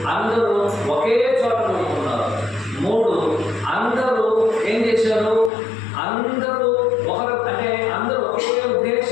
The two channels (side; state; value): right; drops out; at 5.5 s